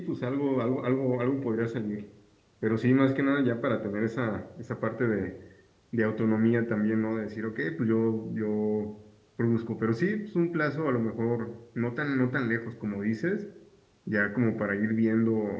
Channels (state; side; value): identical; both; correlation 1.00